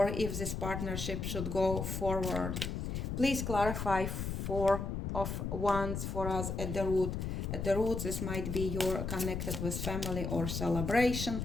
if this partnership should go forward. Please clarify Four of Wands for us at the root. At the root, this might be you're connected with family or celebration.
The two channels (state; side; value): noise; left; rumble, 3 dB below the sound